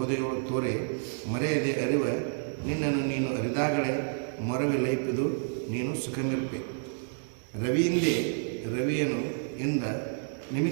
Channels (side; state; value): left; silent; digital silence